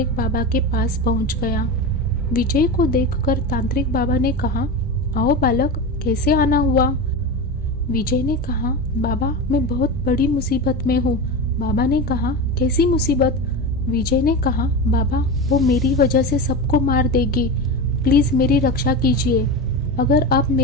बाबा के पास पहुंच गया। विजय को देखकर तांत्रिक बाबा ने कहा, आओ बालक, कैसे आना हुआ? विजय ने कहा, बाबा मैं बहुत बड़ी मुसीबत में हूँ। बाबा ने कहा, कैसी मुसीबत? विजय ने कहा, बाबा वो मेरी वजह से सबको मार देगी, प्लीज मेरी रक्षा कीजिए। अगर आप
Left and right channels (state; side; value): normal; both; correlation 0.23